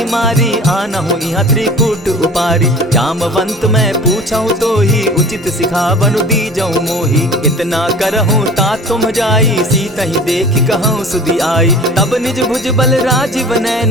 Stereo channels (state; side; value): normal; both; correlation 0.42